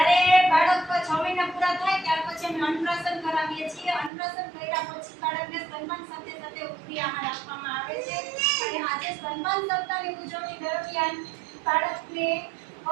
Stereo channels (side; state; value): left; drops out; at 4.1 s